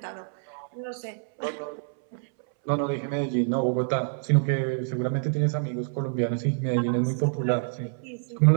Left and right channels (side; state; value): left; silent; 60 dB below the other